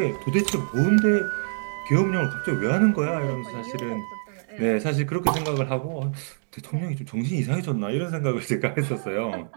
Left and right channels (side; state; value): left; silent; digital silence